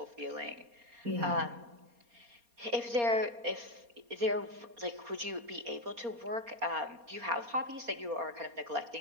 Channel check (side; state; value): left; late; 4.2 ms